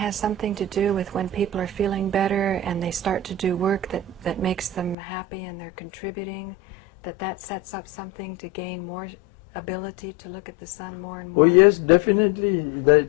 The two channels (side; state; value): right; drops out; at 5.0 s